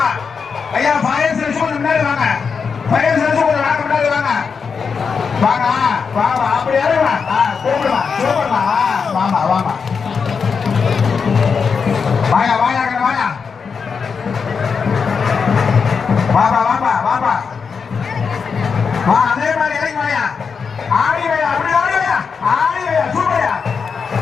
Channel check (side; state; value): right; quieter; 5.7 dB